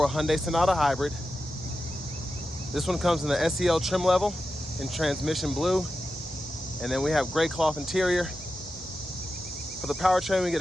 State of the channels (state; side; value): normal; both; correlation 0.91